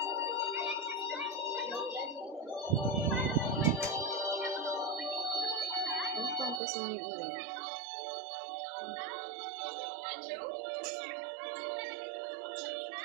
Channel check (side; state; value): left; drops out; at 6.6 s